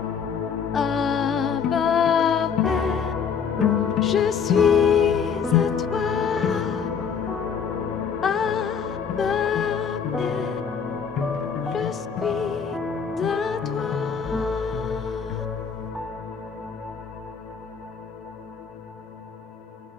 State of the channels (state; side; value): quieter; right; 6.6 dB